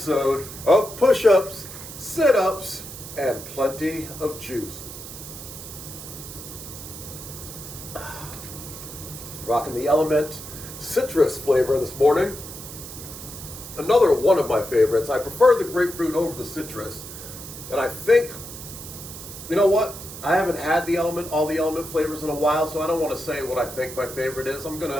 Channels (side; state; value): right; noise; hiss, 12 dB below the sound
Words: of Push-Ups, Sit-Ups, and Plenty of Juice. Rocking the Element citrus flavor this morning. Another one of my favorites. I prefer the grapefruit over the citrus. And I think, you know what? I haven't had all the element flavors in a while, so I don't want to say what I think my favorite is. I'm going